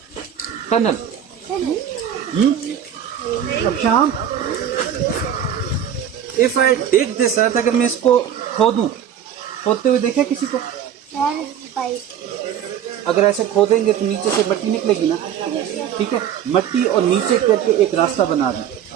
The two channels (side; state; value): left; quieter; 9.5 dB